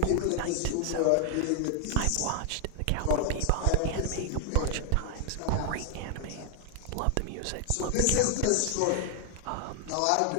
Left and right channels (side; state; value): both; different; correlation 0.00